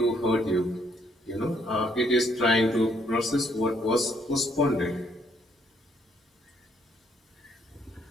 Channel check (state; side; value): normal; both; correlation 0.70